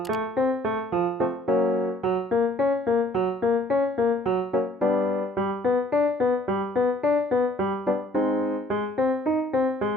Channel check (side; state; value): both; normal; correlation 0.59